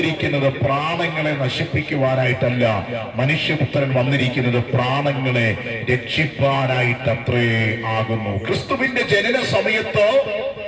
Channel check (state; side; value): identical; both; correlation 1.00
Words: പ്രാണങ്ങളെ നശിപ്പിക്കുവാനായിട്ടല്ല, മനുഷ്യപുത്രൻ വന്നിരിക്കുന്നത് പ്രാണങ്ങളെ രക്ഷിപ്പാനായിട്ടത്രേ ആകുന്നു. ക്രിസ്തുവിന്റെ ജനന സമയത്ത്